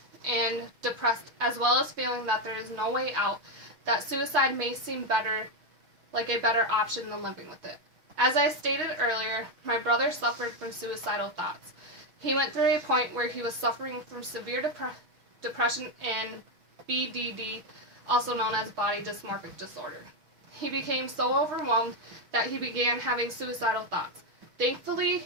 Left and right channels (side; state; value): left; late; 6.4 ms